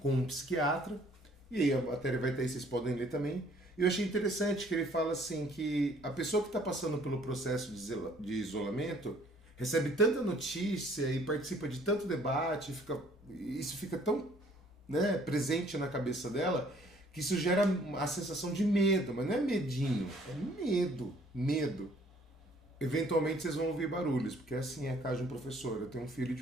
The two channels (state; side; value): normal; both; correlation 0.59